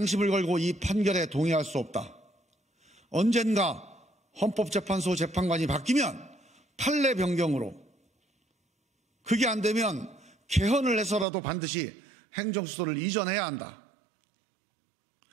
걸고 이 판결에 동의할 수 없다. 언젠가 헌법재판소 재판관이 바뀌면 판례 변경으로, 그게 안 되면 개헌을 해서라도 반드시 행정수도를 이전해야 한다.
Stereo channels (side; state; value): left; drops out; at 11.2 s